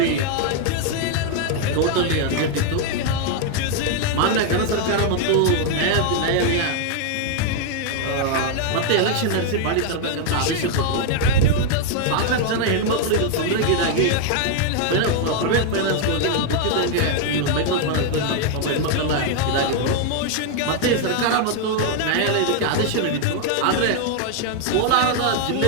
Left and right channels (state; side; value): different; both; correlation 0.00